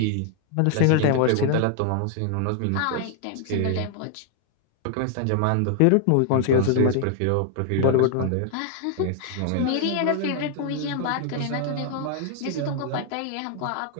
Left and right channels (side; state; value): both; different; correlation 0.00